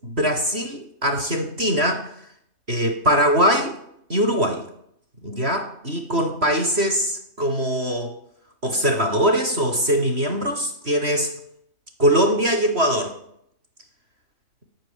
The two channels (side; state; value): left; late; 3.0 ms